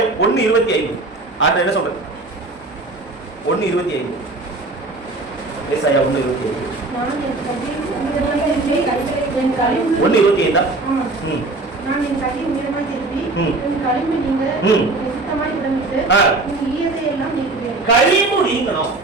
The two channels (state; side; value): quieter; left; 3.2 dB